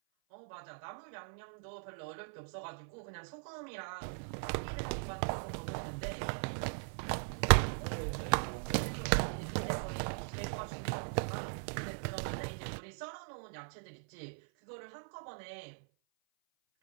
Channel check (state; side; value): silent; left; 52 dB below the other